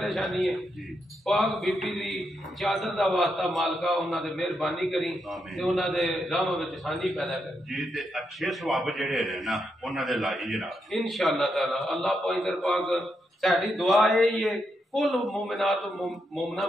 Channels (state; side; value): normal; both; correlation 0.82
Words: है पाक बीबी दी चादर दा वास्ता मालका उन्हां दे मेहरबानी करी ते उन्हां दे राह विच आसानी पैदा कर जी ते अच्छे सवाब जेड़े ने ना उन्हां दे लाई जनाब इंशाअल्लाह ताला। अल्लाह पैंतर पाक साडी दुआ यही है कुल मोमिनात मोमना